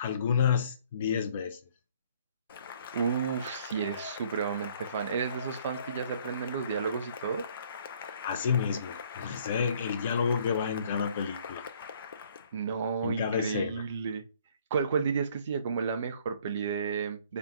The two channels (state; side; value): inverted; both; correlation -0.59